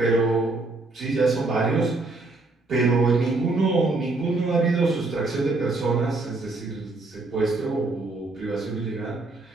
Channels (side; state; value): left; quieter; 3.3 dB